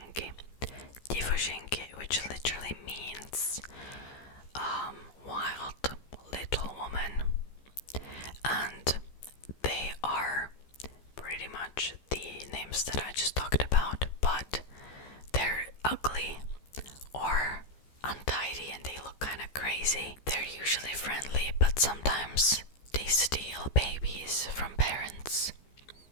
Dziewczynki, which literally means wild little woman. And they are pretty much the names that I just talked about, but they're ugly or untidy and they look kind of crazy. They're usually friendly, but sometimes they steal babies from parents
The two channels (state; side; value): late; right; 15 ms